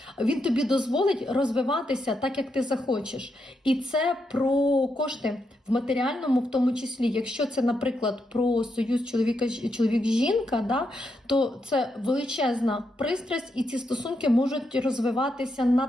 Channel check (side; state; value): both; normal; correlation 0.82